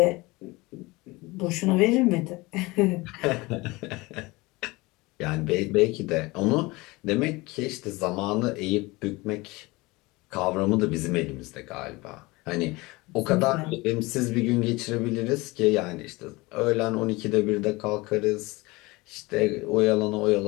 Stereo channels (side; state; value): right; quieter; 22.8 dB